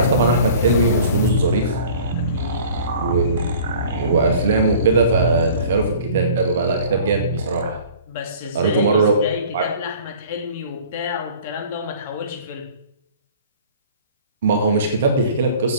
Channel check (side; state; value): both; inverted; correlation -0.47